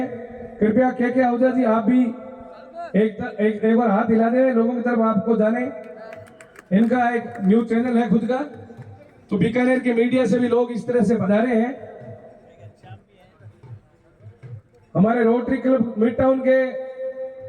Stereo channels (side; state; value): both; identical; correlation 1.00